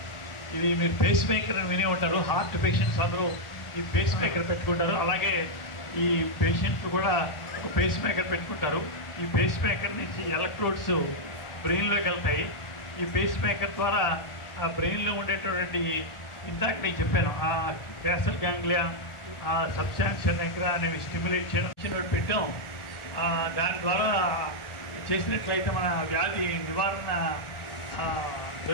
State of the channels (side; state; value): right; late; 1.4 ms